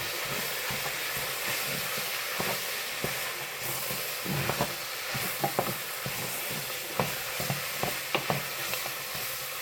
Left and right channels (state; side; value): identical; both; correlation 1.00